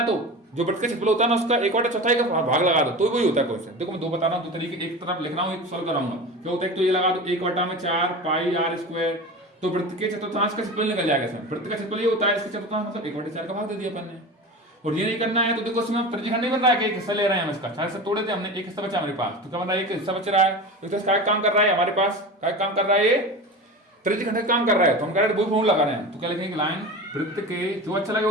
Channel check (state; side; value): normal; both; correlation 0.30